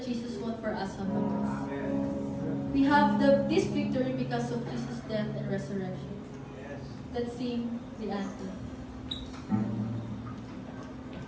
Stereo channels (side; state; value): both; identical; correlation 1.00